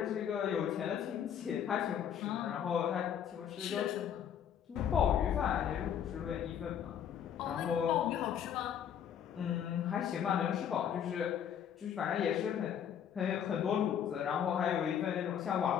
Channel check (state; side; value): quieter; right; 8.9 dB